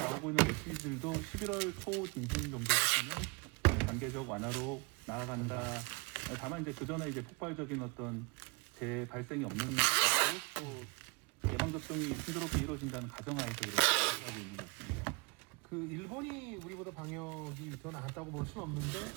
있는 메시지들도 11월 초 중순 정도부터는 단계적 완화로 나아간다. 다만 이제 그 전에 이제 폭발적인 어떤 재발생이 없는 것도 또 예방 접종이 순조롭게 이루어진다는 가정하에서 그렇게 하고 있는 것 같습니다. 그 일본이 우리보다 방역이 더 나았다고 볼 수는 없는데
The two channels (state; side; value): quieter; left; 29.0 dB